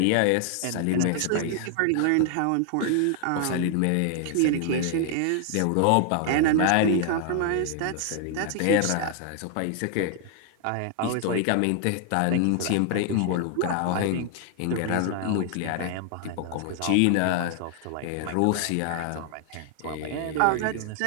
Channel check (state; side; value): different; both; correlation 0.00